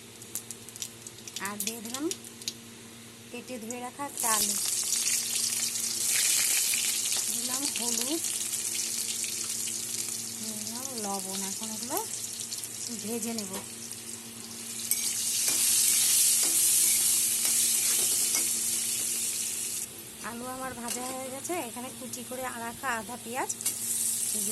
আর দিয়ে দিলাম কেটে ধুয়ে রাখা একটা আলু, দিলাম হলুদ, দিলাম লবণ। এখন এগুলো ভেজে নেব। আলু আমার ভাজা হয়ে গেছে। এখানে কুচি করে রাখা আধা পেঁয়াজ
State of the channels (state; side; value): identical; both; correlation 1.00